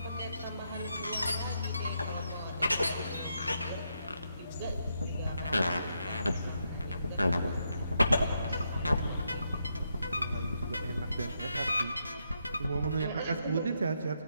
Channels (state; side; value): inverted; both; correlation -0.81